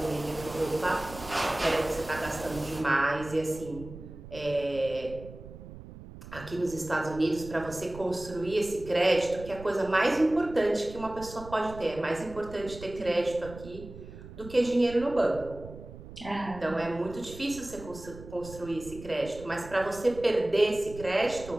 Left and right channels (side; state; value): right; noise; rumble, 15 dB below the sound